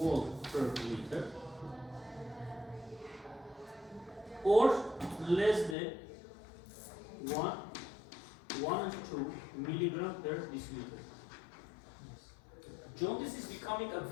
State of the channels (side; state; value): right; drops out; at 5.8 s